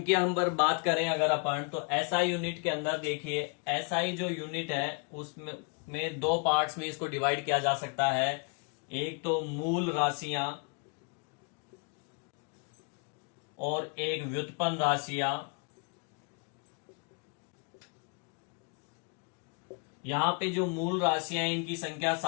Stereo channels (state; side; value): quieter; right; 38.5 dB